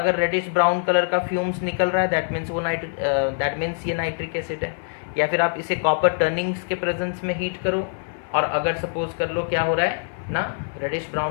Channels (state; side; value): silent; right; 63 dB below the other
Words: रेडिश ब्राउन कलर का फ्यूम्स निकल रहा है दैट मीन्स ये नाइट्रिक एसिड है। या फिर आप इसे कॉपर टर्निंग्स के प्रेजेंस में हीट करो, और अगर सपोज कर लो क्या हो रहा है ना, रेडिश